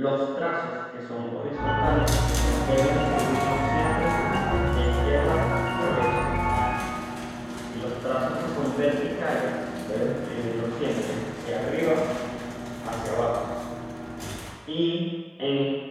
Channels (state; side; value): identical; both; correlation 1.00